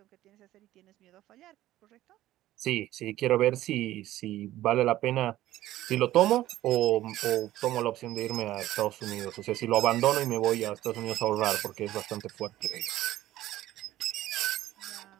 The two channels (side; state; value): left; quieter; 14.7 dB